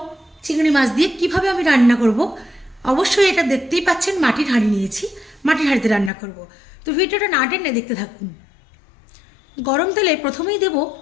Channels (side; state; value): right; drops out; at 6.1 s